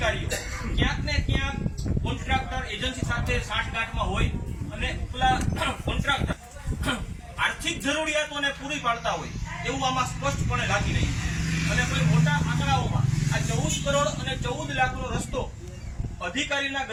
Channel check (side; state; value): both; identical; correlation 1.00